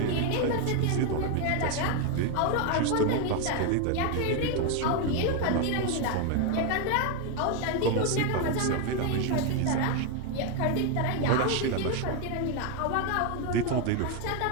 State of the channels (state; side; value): different; both; correlation 0.01